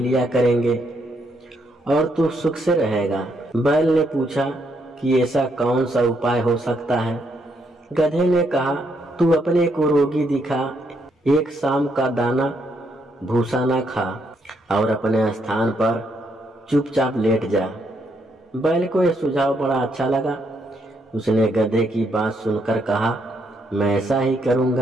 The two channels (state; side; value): normal; both; correlation 0.75